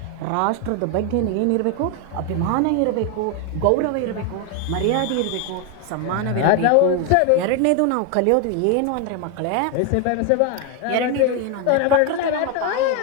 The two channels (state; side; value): different; both; correlation 0.01